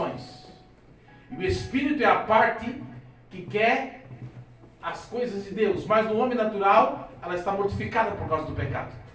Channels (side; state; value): both; identical; correlation 1.00